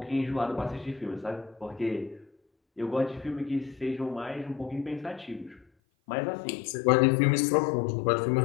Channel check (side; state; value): right; drops out; at 5.7 s